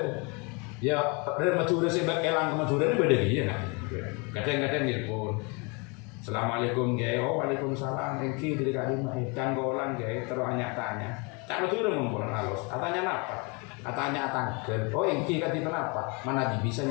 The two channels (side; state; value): right; quieter; 31.0 dB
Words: ya dari Madura sebab elang ke Madura ini beda dia kan kadang-kadang telepon Assalamualaikum gaya waalaikumsalam engki dari kalimah canggolan gaya terus tanya cak Madura mempunyai halus katanya apa katanya tangkel engki kati kenapa mana